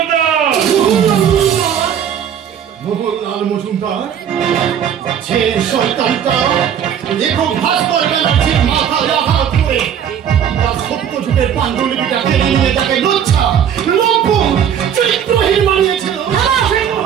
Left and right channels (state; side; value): quieter; left; 8.9 dB